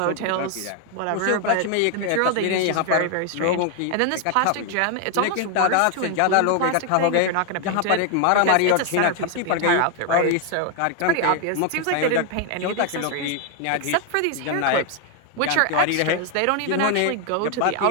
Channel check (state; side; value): different; both; correlation 0.00